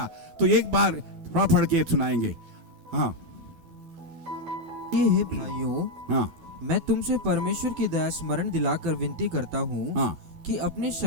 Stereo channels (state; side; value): late; left; 12 ms